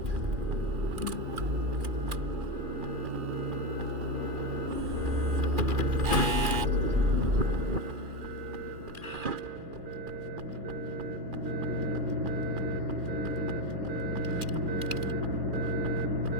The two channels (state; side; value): late; left; 2.4 ms